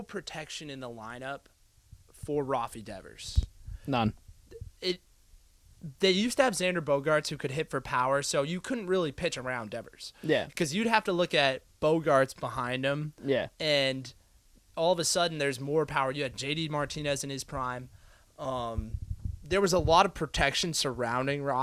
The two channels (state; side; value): identical; both; correlation 1.00